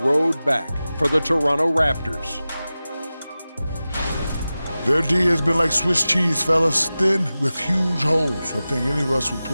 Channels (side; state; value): both; inverted; correlation -0.95